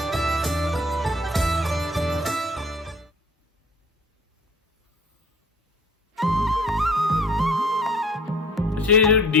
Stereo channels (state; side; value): normal; both; correlation 0.49